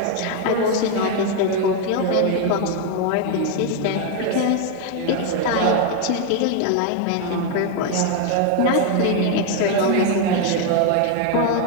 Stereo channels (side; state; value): both; different; correlation 0.01